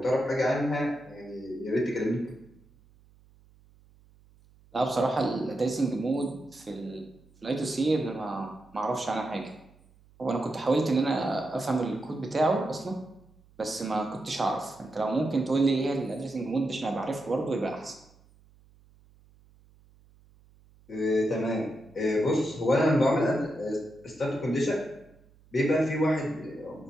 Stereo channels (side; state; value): right; noise; hum, 28 dB below the sound